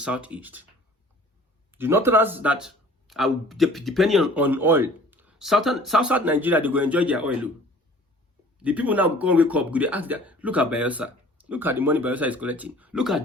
The northerners that are depending on oil, South Nigeria, they go enjoy their oil. The people now go and wake up, they ask that, look at Bayelsa. Look at the money Bayelsa is collecting. Look at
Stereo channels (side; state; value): both; normal; correlation 0.50